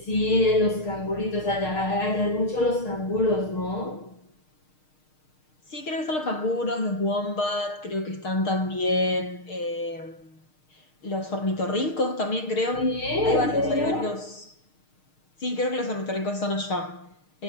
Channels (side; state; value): right; late; 6.5 ms